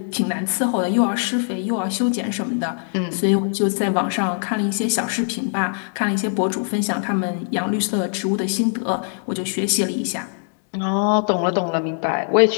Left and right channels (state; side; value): silent; right; 62 dB below the other